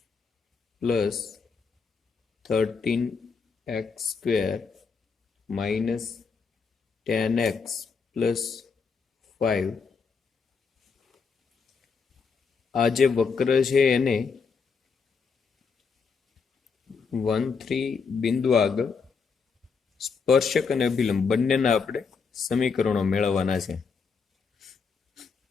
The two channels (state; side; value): quieter; right; 5.4 dB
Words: plus 13x square minus 10x plus 5. આ જે વક્ર છે એને 1-3 બિંદુ આગળ સ્પર્શક અને અભિલંબ બંનેના આપણે સમીકરણો મેળવવાના છે.